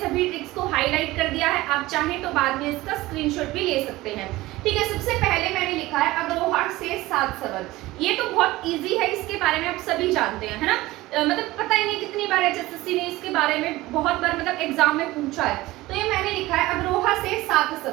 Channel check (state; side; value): quieter; left; 18.5 dB